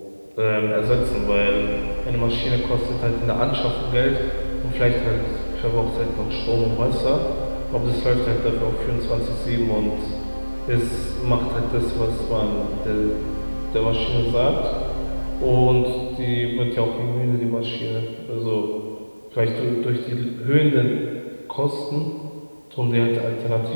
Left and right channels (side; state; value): both; inverted; correlation -1.00